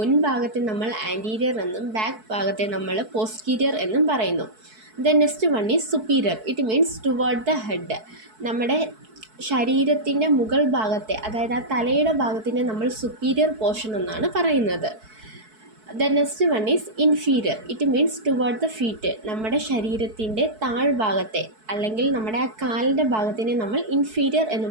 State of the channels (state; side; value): late; left; 4.6 ms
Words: നമ്മൾ anterior എന്നും ബാക്ക് ഭാഗത്തെ നമ്മൾ പോസ്റ്റീരിയർ എന്നും പറയുന്നു. The next one is superior. It means toward the head. നമ്മുടെ ശരീരത്തിൻ്റെ മുകൾ ഭാഗത്തെ, അതായത് ആ തലയുടെ ഭാഗത്തിനെ നമ്മൾ സുപ്പീരിയർ പോർഷൻ എന്നാണ് പറയുന്നത്. The next one is inferior. It means toward the feet. നമ്മുടെ ശരീരത്തിൻ്റെ താഴ്ഭാഗത്തെ അല്ലെങ്കിൽ നമ്മുടെ ആ കാലിൻ്റെ ഭാഗത്തിനെ നമ്മൾ ഇൻഫീരിയർ എന്ന്